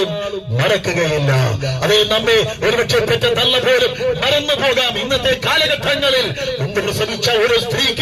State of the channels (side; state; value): both; identical; correlation 1.00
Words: മറക്കുകയില്ല. അതേ, നമ്മെ ഒരുപക്ഷെ പെറ്റ തള്ള പോലും മറന്നു പോകാം. ഇന്നത്തെ കാലഘട്ടങ്ങളിൽ മുമ്പ് പ്രസവിച്ച ഒരു